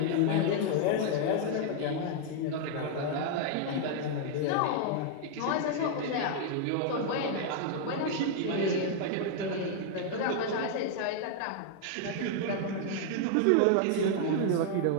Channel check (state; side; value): different; both; correlation 0.00